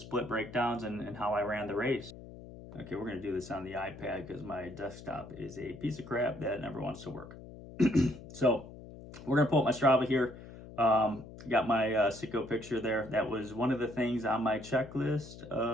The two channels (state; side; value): noise; left; hum, 15 dB below the sound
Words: breakdowns and how I ran the race. Okay, we're gonna do this on the iPad because my desktop is a piece of crap that never wants to work. So we're gonna pull up my Strava here. Got my Citgo picture there. That was one of the things on my checklist